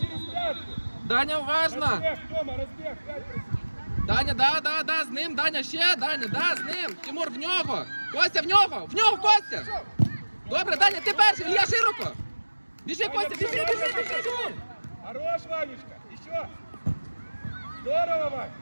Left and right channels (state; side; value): inverted; both; correlation -1.00